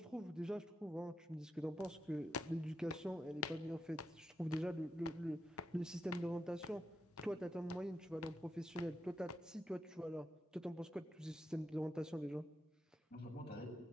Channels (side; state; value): both; normal; correlation 0.86